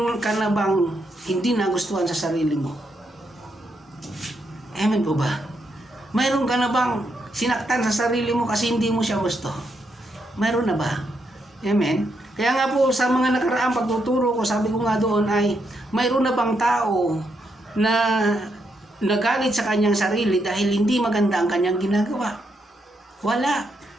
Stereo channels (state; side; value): normal; both; correlation 0.79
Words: ka na bang hindi nagustuhan sa sarili mo? Amen po ba? Mayroon ka na bang sinaktan sa sarili mo kasi hindi mo siya gusto? Mayroon na ba? Amen? Kaya nga po sa mga nakaraang pagtuturo ko, sabi ko nga doon ay mayroon na bang tao na nagalit sa kanyang sarili dahil hindi maganda ang kanyang ginagawa? Wala.